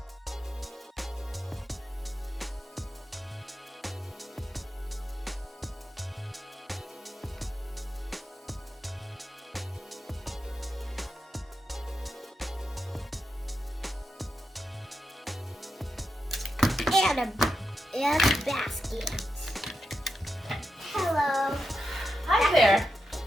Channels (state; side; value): normal; both; correlation 0.87